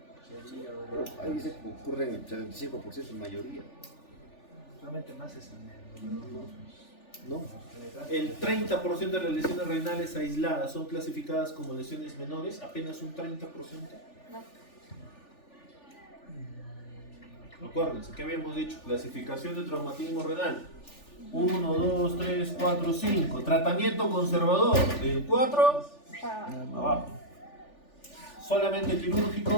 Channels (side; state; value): right; late; 3.4 ms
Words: Ahí dice que ocurre en el 75% en mayoría. Solamente más es en el número No. El 30% de las lesiones renales aisladas son clasificadas como lesiones menores, apenas un 30%. No. Acuérdense, ¿qué habíamos dicho? Clasificación de traumatismo renal. 1, 2, 3, 4, 5. Tratamiento conservador. Del 4 Ah, abajo. Solamente